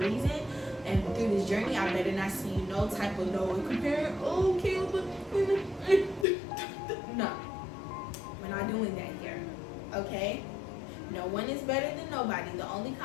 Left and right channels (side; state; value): right; drops out; at 6.2 s